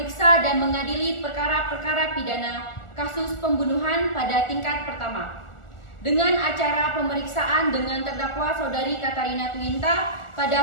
dan mengadili perkara-perkara pidana kasus pembunuhan pada tingkat pertama. Dengan acara pemeriksaan dengan terdakwa Saudari Katarina Twinta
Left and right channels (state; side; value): late; right; 1.4 ms